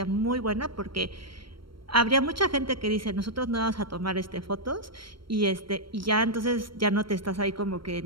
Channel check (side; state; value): left; late; 0.74 ms